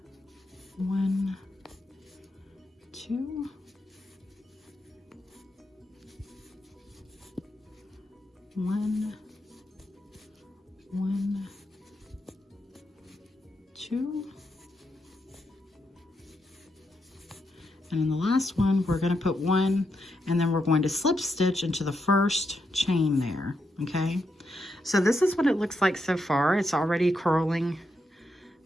2. 1, 1, 2, and in the last one we're going to put 1, and then we're going to slip stitch into the first chain there. Okay, so this is what it looks like so far. It's already curling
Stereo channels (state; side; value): normal; both; correlation 0.83